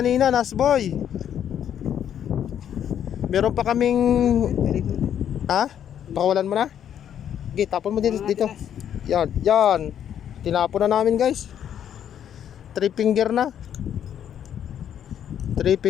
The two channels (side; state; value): right; quieter; 9.6 dB